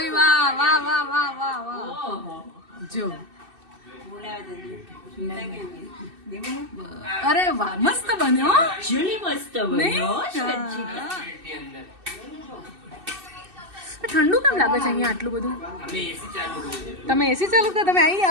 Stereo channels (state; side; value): late; left; 2.6 ms